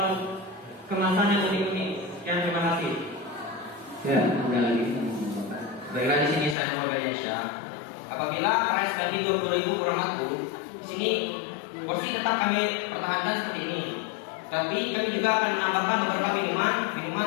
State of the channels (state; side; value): drops out; right; at 6.6 s